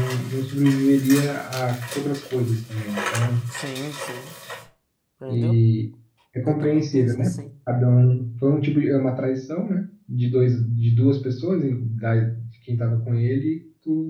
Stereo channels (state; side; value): identical; both; correlation 1.00